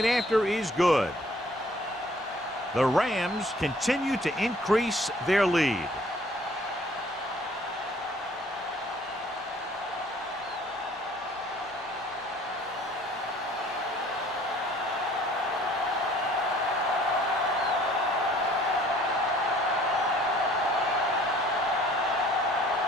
after is good. The Rams continue to increase their lead.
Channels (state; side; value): normal; both; correlation 0.56